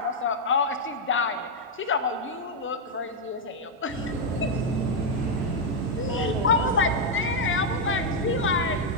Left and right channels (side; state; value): both; normal; correlation -0.02